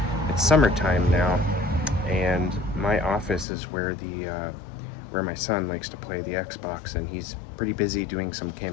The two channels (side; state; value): right; drops out; at 3.5 s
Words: summertime now, and my office is where where my son likes to play the Xbox, and he's pretty busy doing some